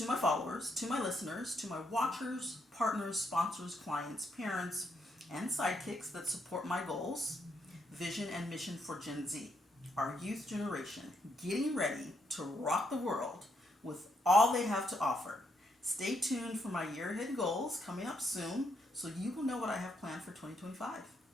my followers, to my listeners, to my watchers, partners, sponsors, clients, parents, and sidekicks that support my goals, vision, and mission for Gen Z, our youth generation, getting ready to rock the world with all they have to offer. Stay tuned for my year ahead goals coming up soon, so you will know what I have planned for 2025.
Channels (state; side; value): normal; both; correlation 0.76